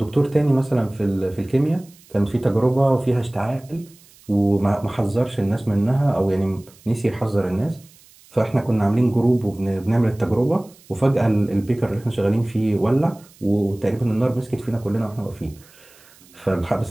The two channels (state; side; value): noise; right; hiss, 26 dB below the sound